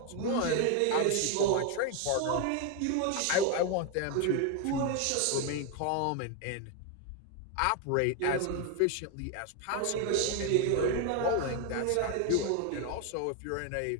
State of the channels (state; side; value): different; both; correlation 0.01